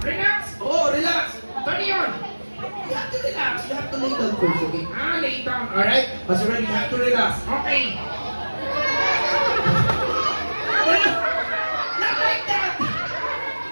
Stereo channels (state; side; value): inverted; both; correlation -1.00